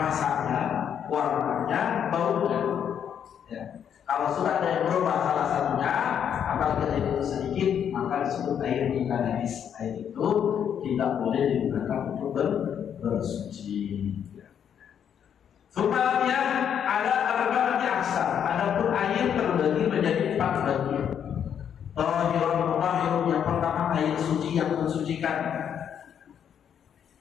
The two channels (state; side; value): quieter; right; 8.6 dB